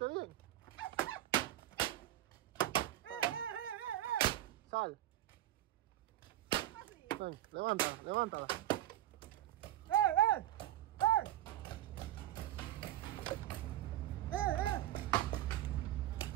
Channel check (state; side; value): quieter; left; 13.3 dB